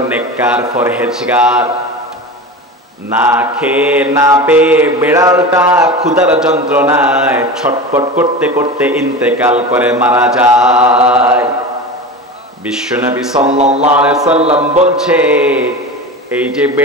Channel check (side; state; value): both; normal; correlation 0.29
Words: নেককার, পরহেজগার, না খেয়ে না পেয়ে বিড়ালটা ক্ষুধার যন্ত্রণায় ছটফট করতে করতে ইন্তেকাল করে মারা যায়। বিশ্বনবী সাল্লাল্লাহু আলাইহি সাল্লাম বলছে, এই যে